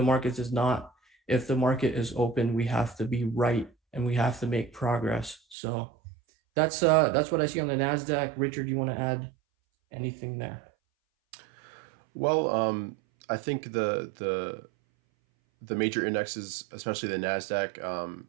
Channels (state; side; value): drops out; left; at 5.6 s